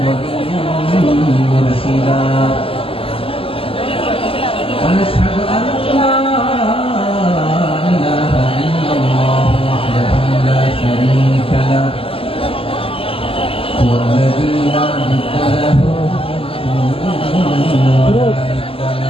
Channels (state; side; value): late; right; 0.27 ms